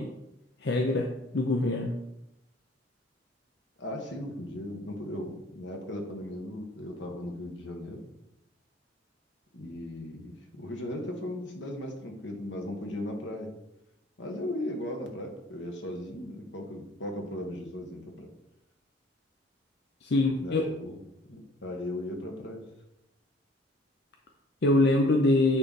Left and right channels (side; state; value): both; normal; correlation 0.55